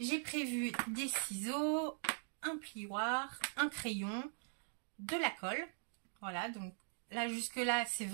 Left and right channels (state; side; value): silent; left; digital silence